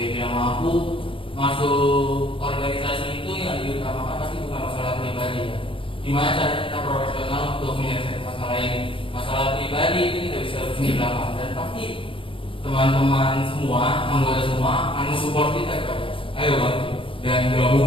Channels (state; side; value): late; right; 0.25 ms